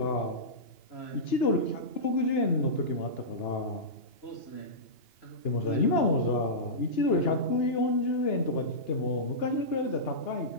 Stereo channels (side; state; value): right; late; 2.9 ms